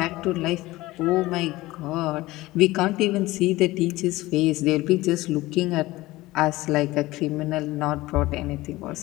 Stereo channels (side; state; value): right; quieter; 18.7 dB